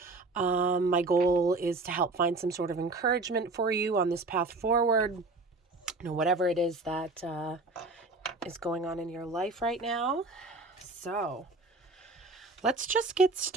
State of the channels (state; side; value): quieter; left; 3.3 dB